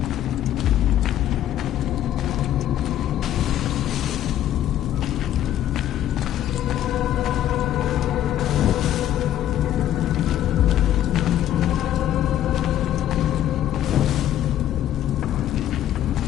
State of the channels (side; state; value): right; quieter; 11.8 dB